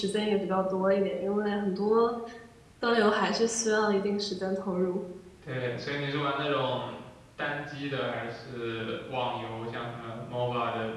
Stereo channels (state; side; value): identical; both; correlation 1.00